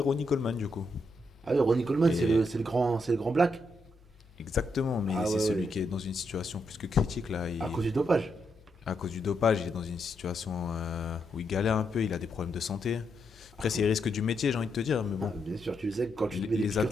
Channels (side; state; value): both; normal; correlation 0.80